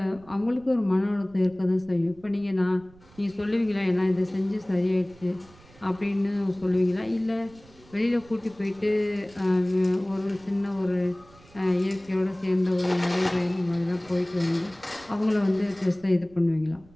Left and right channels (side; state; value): right; noise; rumble, 25 dB below the sound